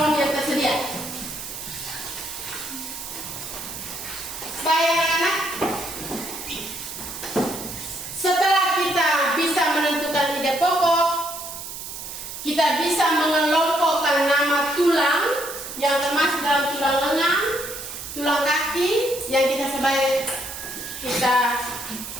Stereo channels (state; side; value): noise; right; hiss, 9 dB below the sound